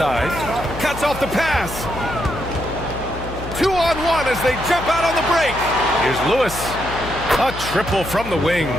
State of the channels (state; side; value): noise; left; hum, 10 dB below the sound